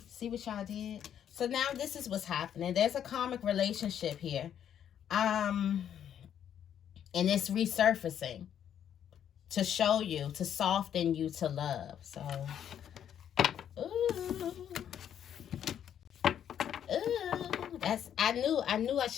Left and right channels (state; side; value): quieter; right; 9.5 dB